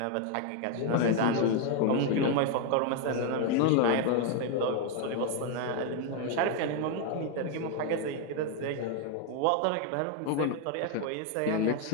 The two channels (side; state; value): both; different; correlation 0.01